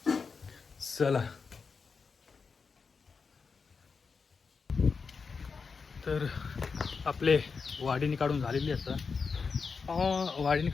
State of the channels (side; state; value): right; quieter; 5.2 dB